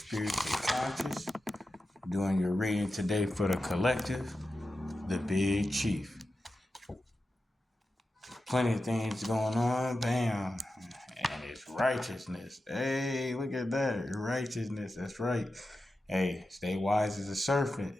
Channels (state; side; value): normal; both; correlation 0.91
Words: conscious. Doing your reading today for the collective, the Big Chief. Plenty of things going on, bam. And it's righteousness. Hey, look at that. Righteousness, that's right. Hey, stay wise as a serpent.